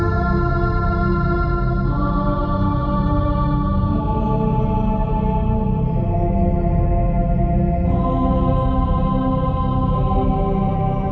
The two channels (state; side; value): identical; both; correlation 1.00